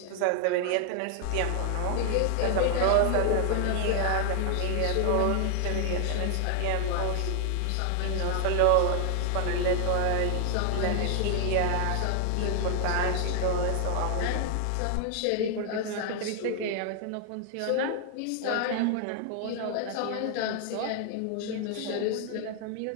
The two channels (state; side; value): different; both; correlation 0.00